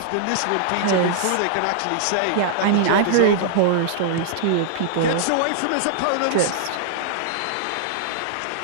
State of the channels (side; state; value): both; different; correlation -0.01